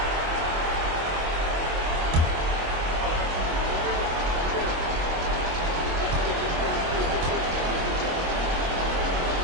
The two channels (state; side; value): late; left; 25 ms